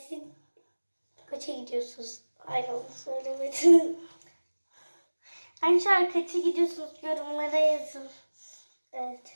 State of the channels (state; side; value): inverted; both; correlation -1.00